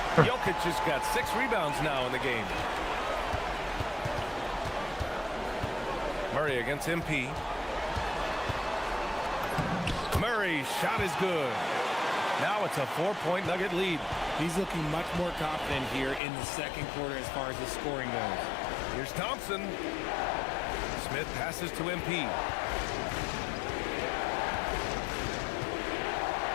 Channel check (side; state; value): right; drops out; at 16.2 s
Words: Jokic has got 6 rebounds now in the game. Murray against MP. Murray's shot is good. Now it's a 4-point Nugget lead. He's looking much more confident here in the second quarter as far as the scoring goes. Here's Thompson. Smith passes to MP.